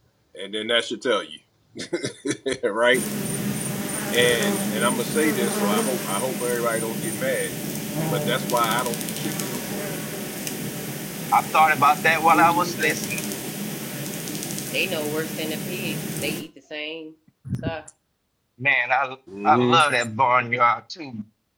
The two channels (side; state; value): both; identical; correlation 1.00